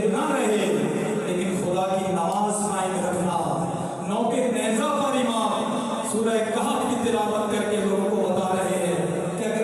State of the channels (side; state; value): both; identical; correlation 1.00